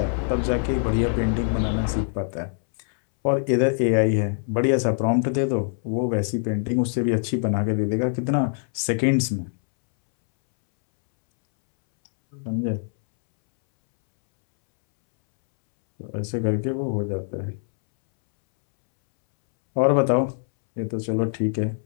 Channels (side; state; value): right; silent; 63 dB below the other